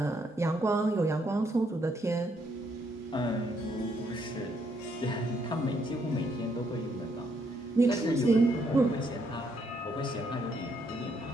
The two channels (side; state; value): both; normal; correlation 0.73